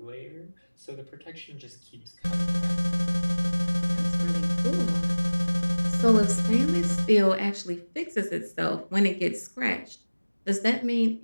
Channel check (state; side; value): inverted; both; correlation -1.00